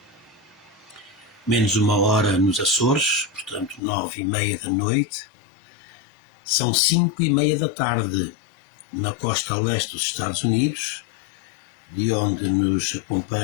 menos uma hora nos Açores, portanto 9h30 da noite, são 5h30 da tarde na costa leste dos Estados Unidos, de onde nos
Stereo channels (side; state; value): right; drops out; at 3.8 s